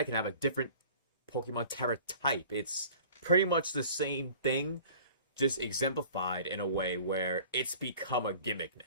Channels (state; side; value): inverted; both; correlation -0.46